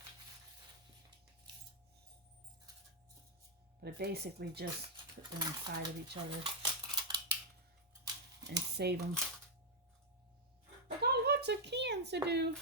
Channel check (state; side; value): normal; both; correlation -0.03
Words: But I basically just put them inside of each other and save them. I got lots of cans to do.